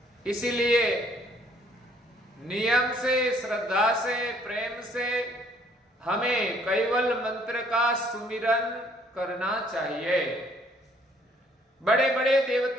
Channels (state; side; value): normal; both; correlation 0.63